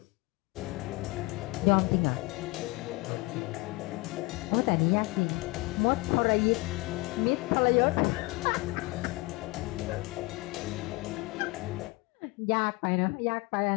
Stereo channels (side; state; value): right; quieter; 24.0 dB